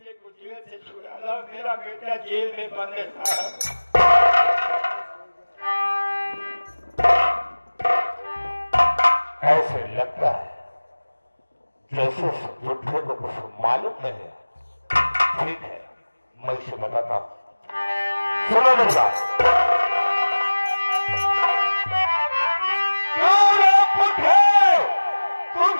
को जेल से छुड़ा लो। मेरा बेटा जेल में बंद था। ऐसे लगता है जैसे बुढ़े को कुछ मालूम नहीं है। ठीक है मैं इसे बताता हूँ, सुनो मेरी बात।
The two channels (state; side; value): inverted; both; correlation -1.00